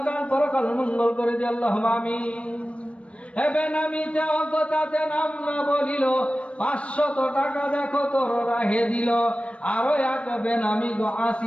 পরকাল মঙ্গল করে দিও। আল্লাহুম্মা আমিন। এবে নামিতে অজ্ঞতাতে নাম না বলিল, 500 টাকা দেখো তোর রাহে দিল। আরো এক বেনামি গো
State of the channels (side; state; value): right; late; 0.062 ms